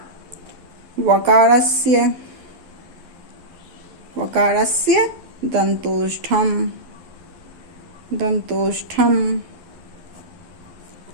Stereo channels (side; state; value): left; late; 11 ms